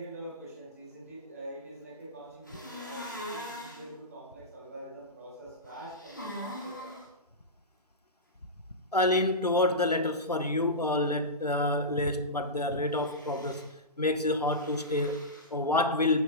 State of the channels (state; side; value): normal; both; correlation -0.16